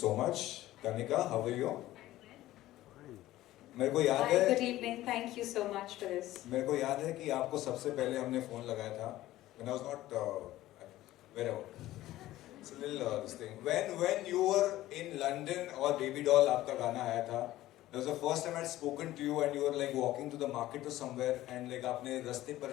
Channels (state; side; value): quieter; right; 15.4 dB